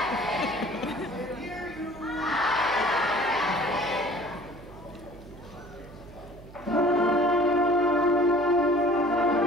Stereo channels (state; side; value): noise; right; hum, 18 dB below the sound